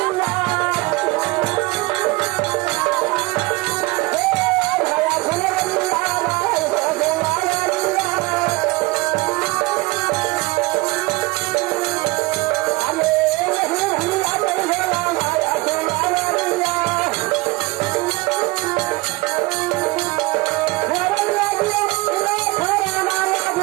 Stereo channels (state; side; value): quieter; left; 22.7 dB